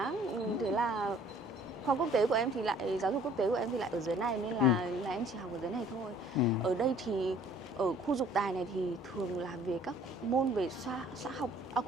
thế là khoa quốc tế của em thì lại, giáo dục quốc tế của em thì lại ở dưới này, nên là em chỉ học ở dưới này thôi. Ở đây thì ở khu Dục Tài này thì thường là về các môn về khoa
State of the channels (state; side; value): normal; both; correlation 0.55